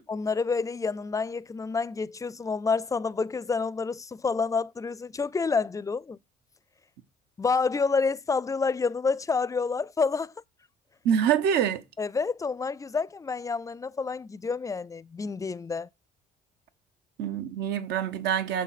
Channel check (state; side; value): normal; both; correlation 0.58